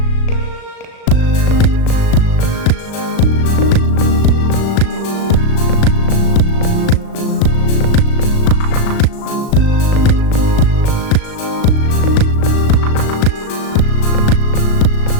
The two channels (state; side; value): late; right; 37 ms